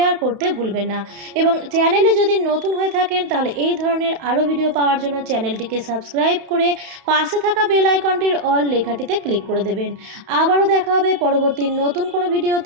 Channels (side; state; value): left; late; 31 ms